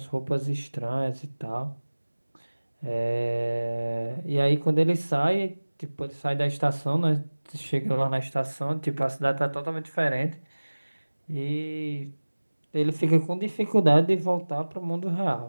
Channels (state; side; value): inverted; both; correlation -1.00